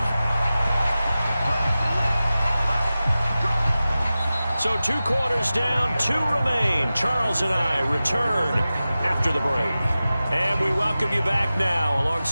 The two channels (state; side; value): inverted; both; correlation -0.95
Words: 5. So 2 quarters down, 2 remain. Charles and I return after the break. And we welcome you back now.